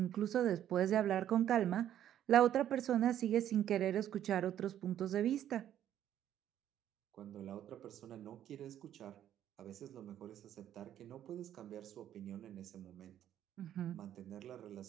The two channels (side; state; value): left; quieter; 11.1 dB